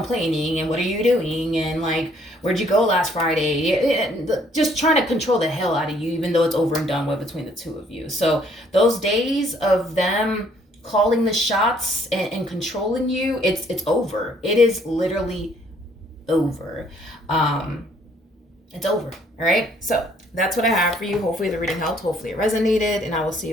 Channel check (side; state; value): both; normal; correlation 0.64